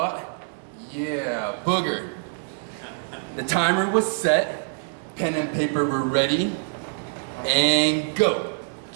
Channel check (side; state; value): left; silent; digital silence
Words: Yeah, Booger. The timer was set, pen and paper were ready, and go.